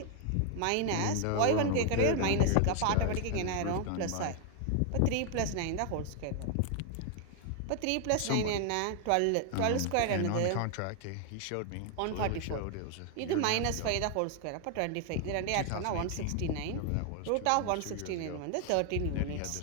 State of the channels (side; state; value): both; different; correlation 0.00